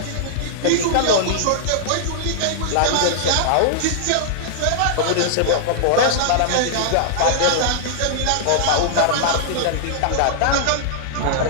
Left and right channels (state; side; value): different; both; correlation -0.01